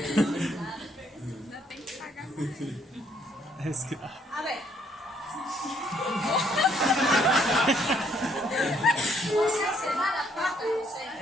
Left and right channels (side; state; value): both; normal; correlation 0.68